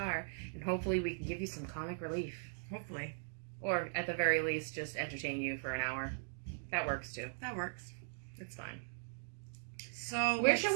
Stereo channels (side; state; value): left; silent; digital silence